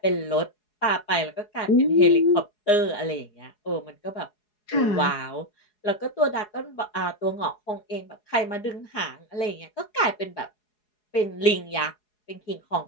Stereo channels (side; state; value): right; late; 4.8 ms